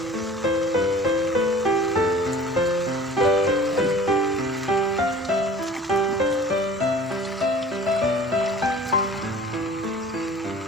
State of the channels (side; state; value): both; normal; correlation 0.45